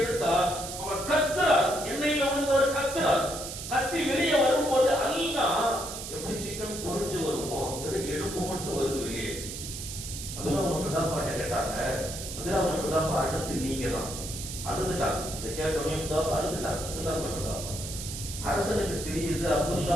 அவன் கத்துறார். எண்ணெயில விழுந்தவர் கத்துறார். கத்தி வெளியே வரும்போது அல்லா எப்படி சிக்கன் பொரிஞ்சு வருமோ எலும்பு மட்டும் வருது வெளியே. அப்துல்லாஹ் இப்னு ஹுதாஃபா கேட்டாங்க, அப்துல்லாஹ் இப்னு ஹுதாஃபா அடுத்து நீங்க தான். அழுதுட்டாங்க. இதை கேட்டோன்னே ஹுதாஃபா அழுதுட்டாங்க. அப்துல்லாஹ் இப்னு ஹுதாஃபா அரசனுக்கு தெரியுது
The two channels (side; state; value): right; noise; hiss, 8 dB below the sound